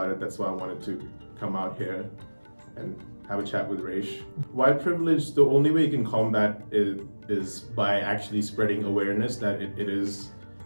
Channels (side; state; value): both; inverted; correlation -1.00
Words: it. That's why I wanted to come out here and have a chat with Raish. White privilege, the only way you can combat it is by actually spreading awareness that it is